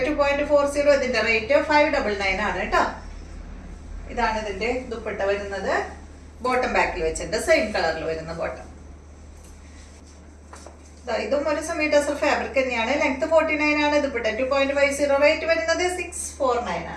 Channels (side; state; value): both; identical; correlation 1.00